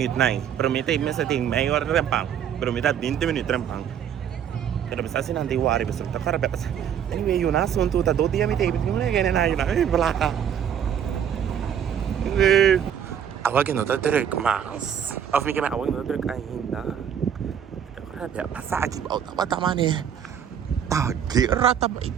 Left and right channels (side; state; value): left; quieter; 8.7 dB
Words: né? Pero me tem maior rempang. Pero me tá 20 minutos rempang. Pero me está assim não tem worry, mas tá cara bem. Anyway, yun na assunto, tá 2 dias me tem, não é ganhar nada, yun na, blá. Awag no ta direct mas. Of me kaya awag no direct ainda. Grabe, pasagi ba tama ni. Tagira ta